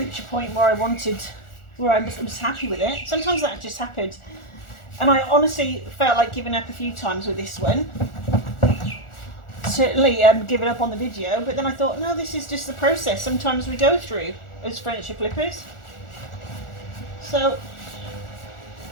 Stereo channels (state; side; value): late; right; 1.4 ms